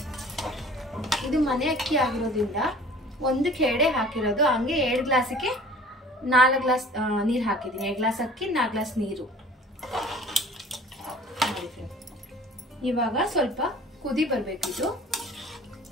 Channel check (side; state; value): both; normal; correlation 0.47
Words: ಇದು ಮನೆ ಅಕ್ಕಿ ಆಗಿರೋದ್ರಿಂದ 1ಕ್ಕೆ 2 ಹಾಕಿರೋದು. ಹಂಗೆ 2 ಗ್ಲಾಸಿಗೆ 4 ಗ್ಲಾಸ್ ನೀರು ಹಾಕಿದ್ದೀನಿ. 2 ಗ್ಲಾಸ್ ಅಕ್ಕಿ 4 ಗ್ಲಾಸ್ ನೀರು. ಇವಾಗ ಸ್ವಲ್ಪ ಕುದಿ ಬರ್ಬೇಕಿದು.